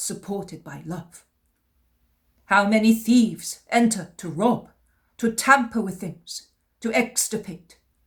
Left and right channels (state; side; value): identical; both; correlation 1.00